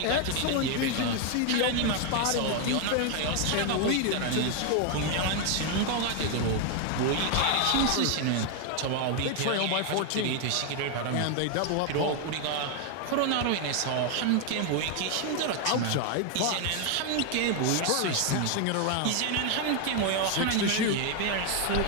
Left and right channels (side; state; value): both; different; correlation 0.01